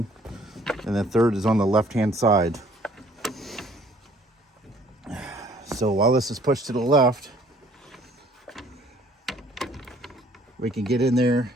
and the third is on the left-hand side. So while this is pushed to the left, we can get in there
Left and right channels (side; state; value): both; normal; correlation 0.58